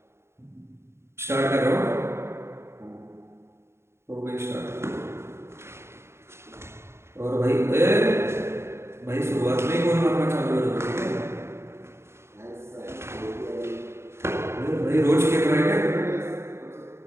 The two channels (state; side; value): late; left; 0.13 ms